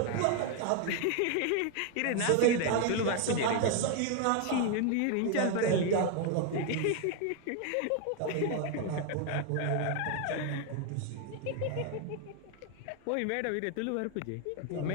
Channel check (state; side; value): different; both; correlation 0.01